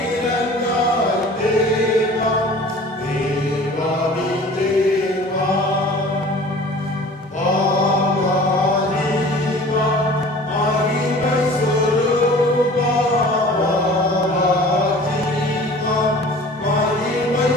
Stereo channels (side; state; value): both; normal; correlation 0.45